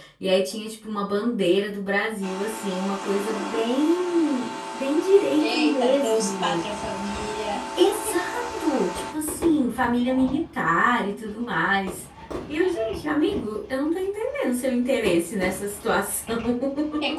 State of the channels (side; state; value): both; identical; correlation 1.00